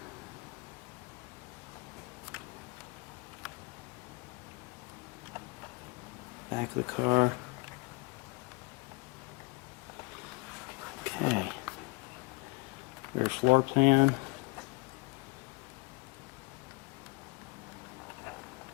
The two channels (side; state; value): right; quieter; 25.9 dB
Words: Back of the car. Okay. Rear floor plan.